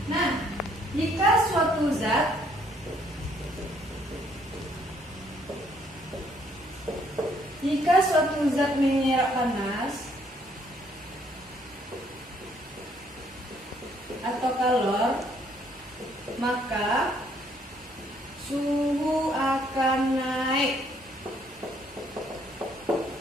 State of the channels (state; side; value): normal; both; correlation 0.66